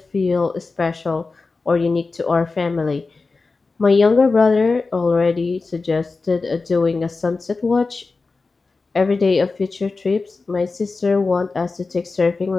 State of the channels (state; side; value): quieter; right; 3.9 dB